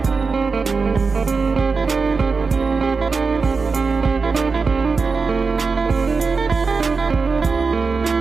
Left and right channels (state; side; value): quieter; left; 4.6 dB